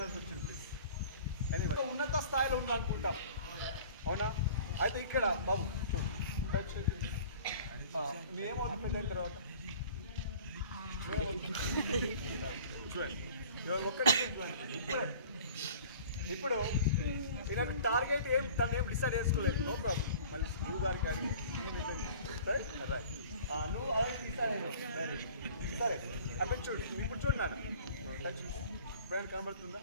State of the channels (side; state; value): both; inverted; correlation -0.47